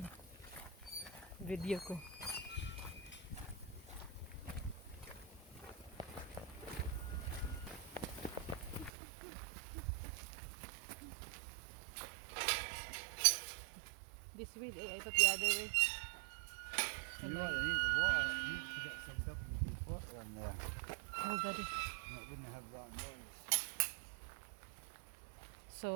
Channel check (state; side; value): drops out; left; at 8.9 s